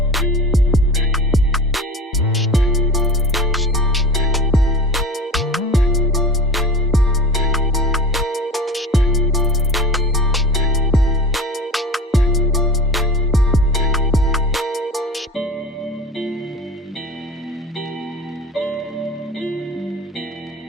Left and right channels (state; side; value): normal; both; correlation 0.37